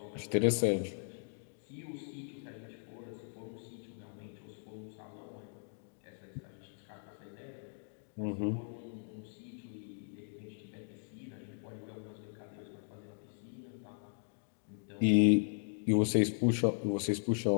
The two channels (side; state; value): right; silent; digital silence